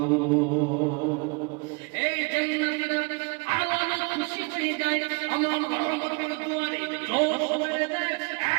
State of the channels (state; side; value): quieter; left; 31.5 dB